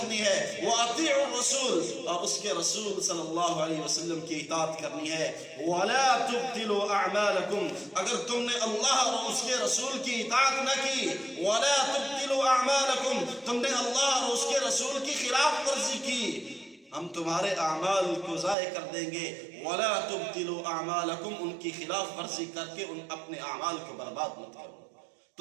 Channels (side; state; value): left; drops out; at 18.6 s